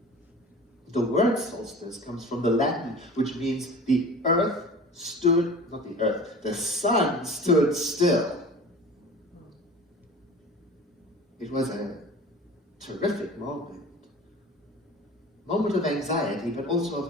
The word solstice comes from the Latin, which means the sun stood still. It was a terrific moment of anxiety, but also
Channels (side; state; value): both; normal; correlation 0.40